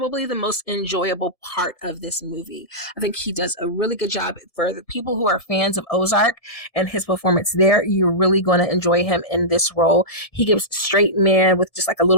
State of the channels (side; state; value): right; late; 1.7 ms